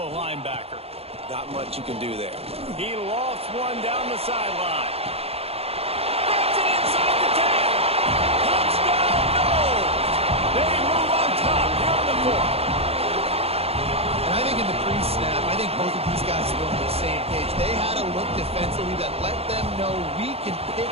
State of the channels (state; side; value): late; left; 0.29 ms